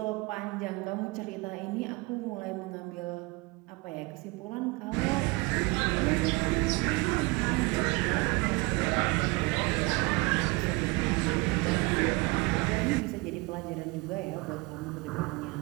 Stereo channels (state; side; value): quieter; left; 25.8 dB